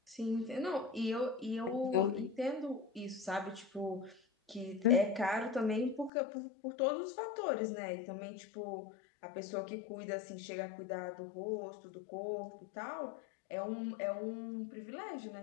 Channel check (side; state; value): right; drops out; at 6.1 s